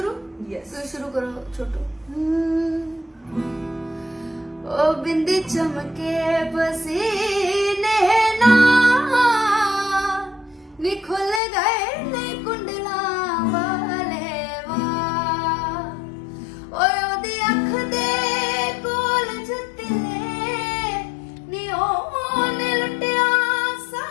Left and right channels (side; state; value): right; drops out; at 11.4 s